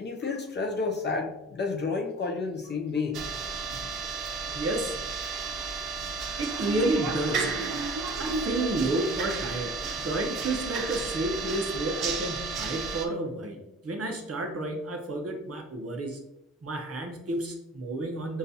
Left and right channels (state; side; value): normal; both; correlation 0.43